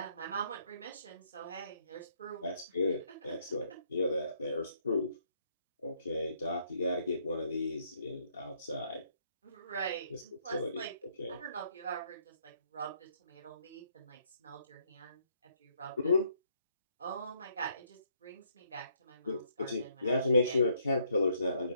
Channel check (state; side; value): inverted; both; correlation -0.70